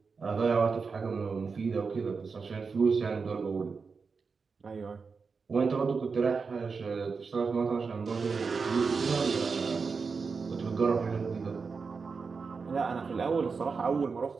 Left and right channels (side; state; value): left; quieter; 5.0 dB